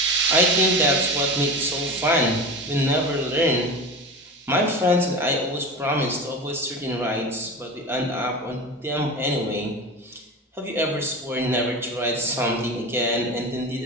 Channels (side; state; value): both; normal; correlation 0.28